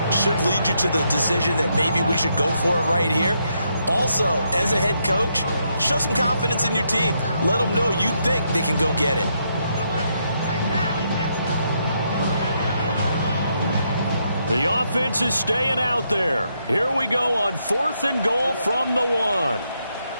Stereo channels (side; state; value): both; inverted; correlation -0.78